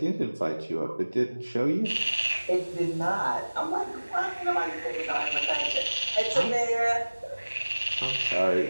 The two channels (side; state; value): both; inverted; correlation -1.00